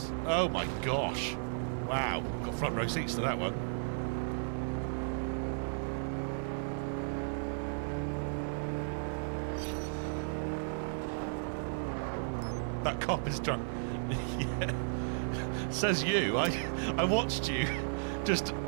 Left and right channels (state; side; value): silent; left; digital silence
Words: Oh my gosh. Wow. Got front row seats to that one. That cop is drunk. Yeah. Says you. I watched you just